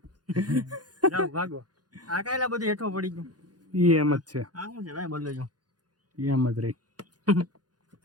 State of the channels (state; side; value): late; left; 0.69 ms